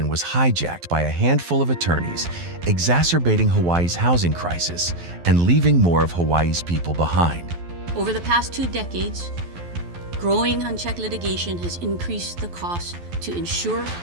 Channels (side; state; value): left; late; 12 ms